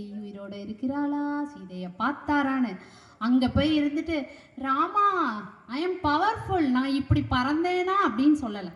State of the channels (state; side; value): identical; both; correlation 1.00